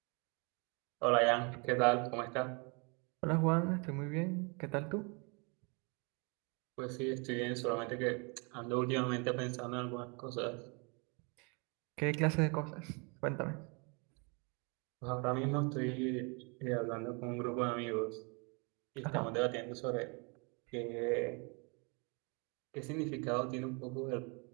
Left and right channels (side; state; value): left; quieter; 32.9 dB